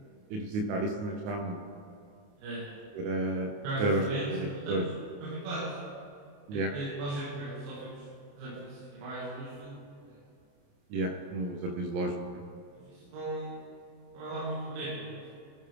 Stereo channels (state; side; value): late; left; 28 ms